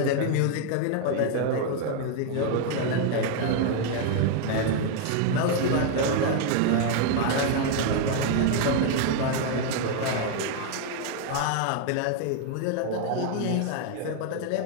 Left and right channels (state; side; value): different; both; correlation 0.00